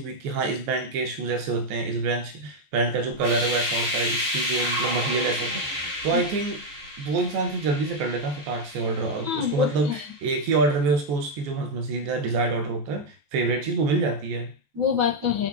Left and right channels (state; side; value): late; left; 14 ms